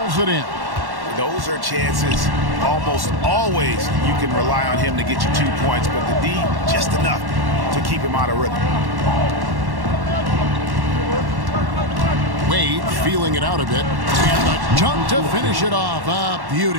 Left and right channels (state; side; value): late; left; 1.1 ms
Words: it in. Those are chances almost always you can rely on him to get you 2 points, but the D, just enough to keep him out of rhythm. Wade feeling it out a bit. And the dunk to finish it off. A